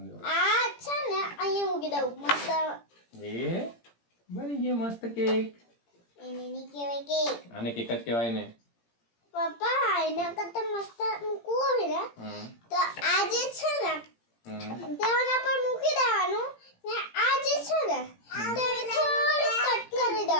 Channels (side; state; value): right; late; 17 ms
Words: આ છે ને અહીંયા મૂકી દઉં મસ્ત. એ બની ગયો મસ્ત કેક. એને ની કહેવાય કેક. આને કેક જ કહેવાય ને. પપ્પા એના કરતા મસ્ત મૂકવું હોય ને તો આ જે છે ને તેના પર મૂકી દેવાનું ને આ જે છે ને તેને થોડું કટ કરી